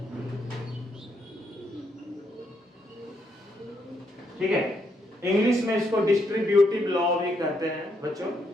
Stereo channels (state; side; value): normal; both; correlation 0.76